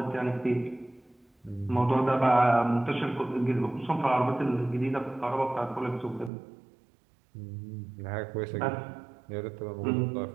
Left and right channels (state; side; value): drops out; left; at 6.3 s